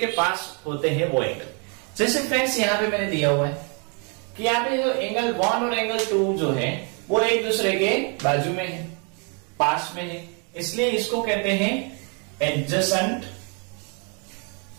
पास होते हैं वो एंगल। जैसे फ्रेंड्स यहां पे मैंने दिया हुआ है कि यहां पे जो एंगल 1 और एंगल 2 जो है वो एक दूसरे के बाजू में है, पास में है, इसलिए इसको कहते हैं एडजेसेंट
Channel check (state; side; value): quieter; left; 36.8 dB